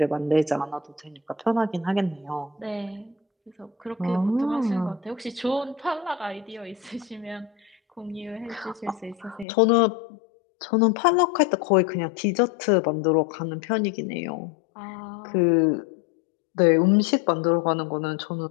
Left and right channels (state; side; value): drops out; right; at 9.5 s